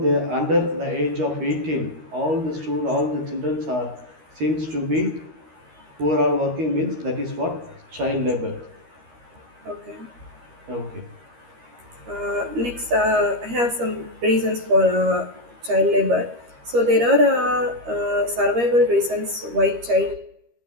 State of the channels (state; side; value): late; left; 13 ms